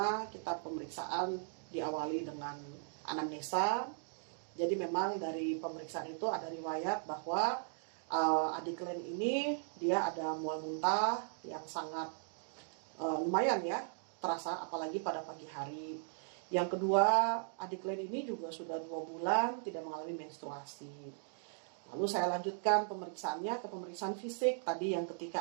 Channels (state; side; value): silent; left; digital silence